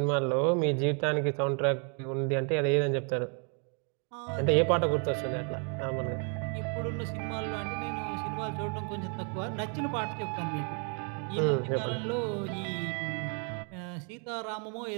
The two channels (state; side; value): quieter; left; 39.3 dB